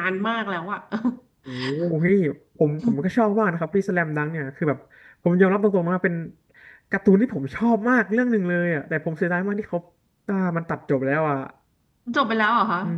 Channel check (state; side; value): identical; both; correlation 1.00